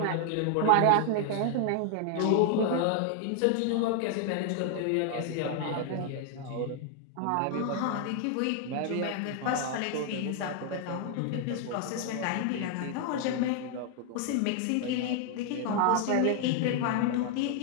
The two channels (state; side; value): different; both; correlation 0.00